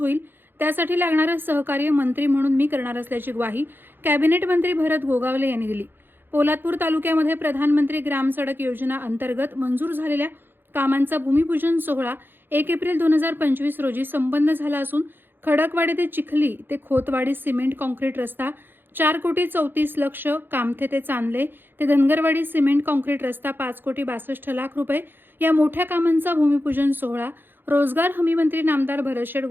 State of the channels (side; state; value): left; late; 0.099 ms